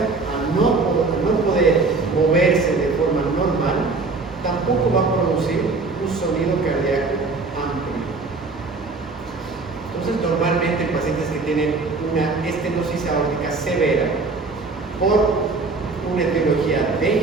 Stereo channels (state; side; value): quieter; left; 3.9 dB